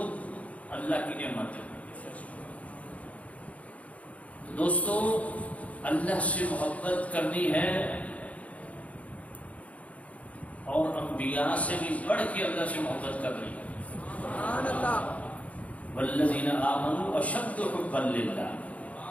اللہ کی نعمت ہے۔ دوستو اللہ سے محبت کرنی ہے، اور انبیاء سے بھی بڑھ کے اللہ سے محبت کرنی ہے۔ سبحان اللہ، والذین آمنوا اشد حبا للہ،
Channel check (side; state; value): right; late; 0.067 ms